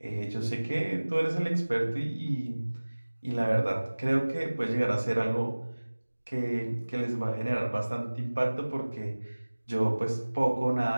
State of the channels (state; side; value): inverted; both; correlation -1.00